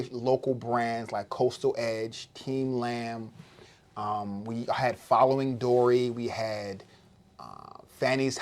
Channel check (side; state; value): both; identical; correlation 1.00